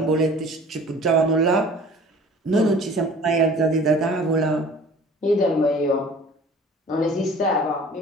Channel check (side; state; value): both; normal; correlation 0.47